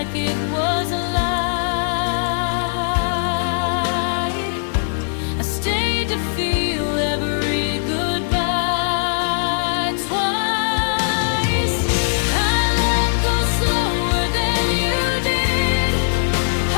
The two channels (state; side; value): silent; right; digital silence